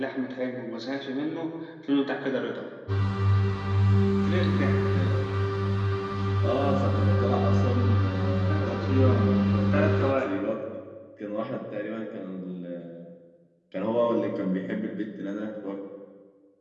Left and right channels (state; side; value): identical; both; correlation 1.00